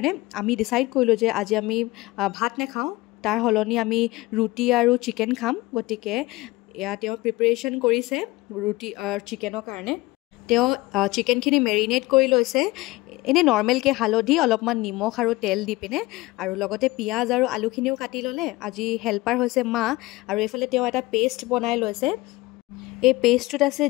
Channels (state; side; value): quieter; right; 20.5 dB